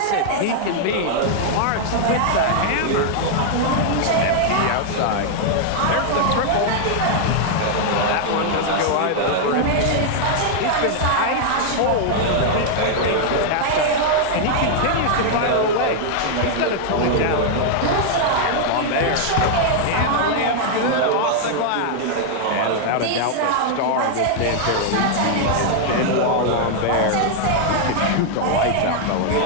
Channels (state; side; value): different; both; correlation -0.01